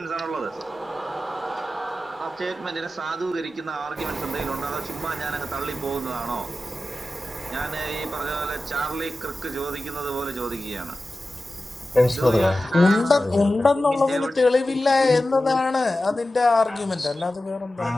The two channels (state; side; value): normal; both; correlation 0.94